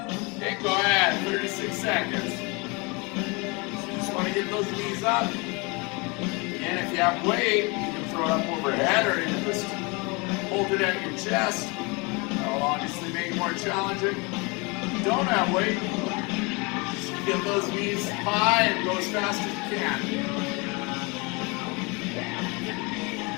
Okay, go ahead, 36 seconds. So you just want to get those knees up. And if you have weight, you can throw it up overhead or you can just hold it at your chest. That'll obviously make it more challenging. If you don't have weight, just get those knees high and go as fast as you can.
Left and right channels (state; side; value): quieter; right; 28.4 dB